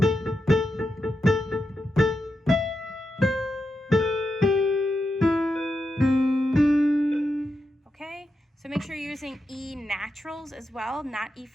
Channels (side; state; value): both; normal; correlation 0.87